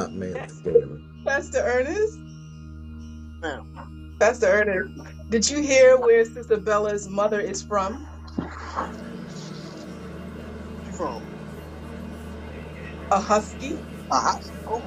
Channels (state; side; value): identical; both; correlation 1.00